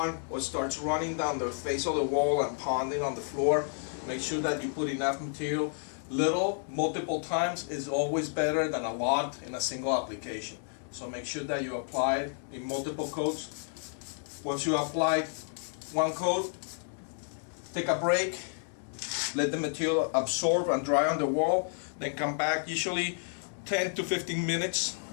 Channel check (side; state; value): right; silent; 57 dB below the other